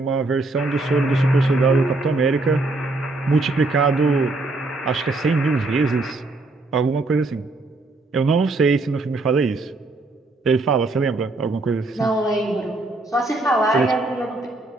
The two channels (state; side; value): quieter; left; 3.1 dB